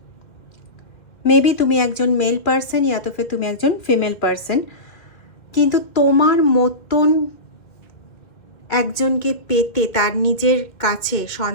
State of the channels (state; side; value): late; right; 2.3 ms